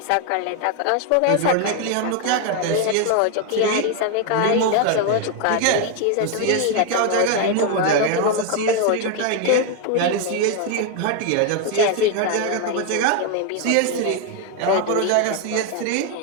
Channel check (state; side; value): different; both; correlation 0.01